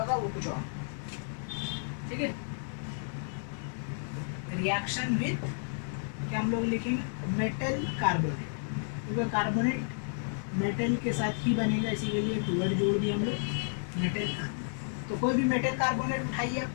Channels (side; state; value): right; silent; digital silence